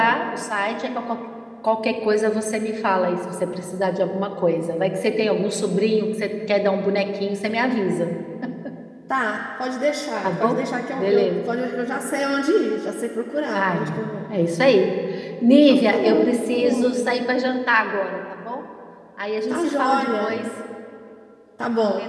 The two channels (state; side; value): identical; both; correlation 1.00